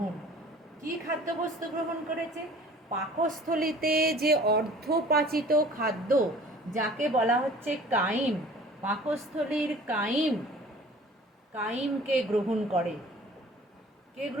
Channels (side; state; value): both; normal; correlation 0.47